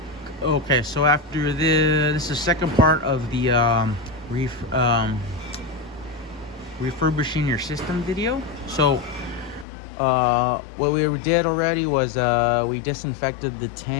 Okay, so after this is the second part of the refurbishing your system video. So what we did already was we disinfected the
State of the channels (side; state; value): right; drops out; at 9.7 s